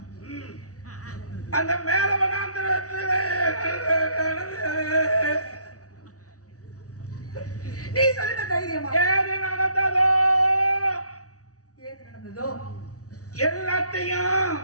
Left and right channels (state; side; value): late; right; 0.67 ms